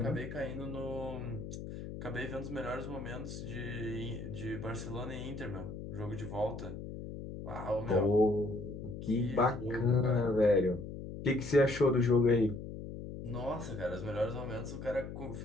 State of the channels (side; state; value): left; noise; hum, 9 dB below the sound